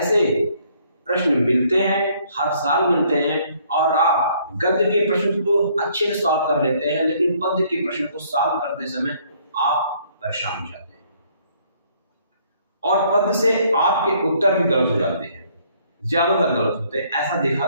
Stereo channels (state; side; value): inverted; both; correlation -0.64